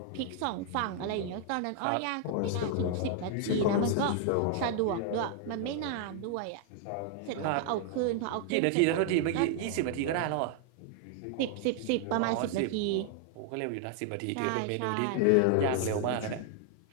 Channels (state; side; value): different; both; correlation 0.00